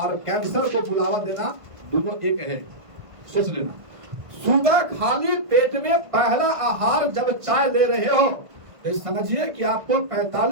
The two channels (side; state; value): left; late; 1.5 ms